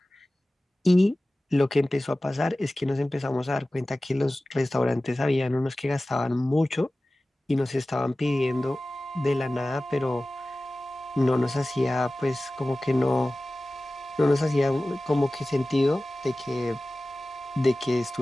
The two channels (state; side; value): normal; both; correlation 0.97